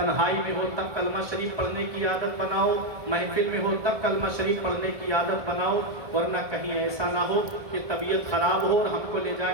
میں ہو تب کلمہ شریف پڑھنے کی عادت بناؤ، محفل میں ہو تب کلمہ شریف پڑھنے کی عادت بناؤ، ورنہ کہیں ایسا نہ ہو کہ طبیعت خراب ہو اور ہم کو لے جا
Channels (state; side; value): late; left; 1.7 ms